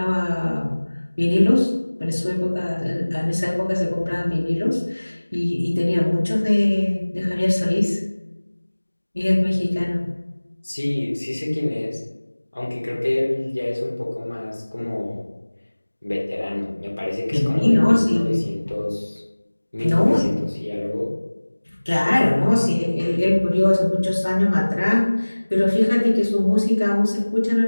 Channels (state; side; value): inverted; both; correlation -1.00